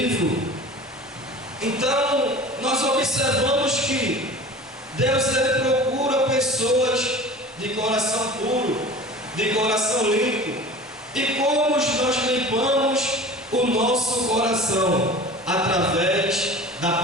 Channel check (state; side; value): normal; both; correlation 0.39